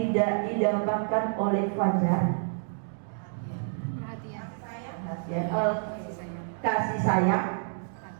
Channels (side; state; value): left; silent; digital silence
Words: didapatkan oleh Fajar, kasih sayang,